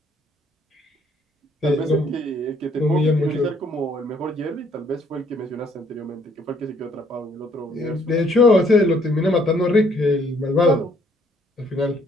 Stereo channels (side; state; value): both; normal; correlation 0.65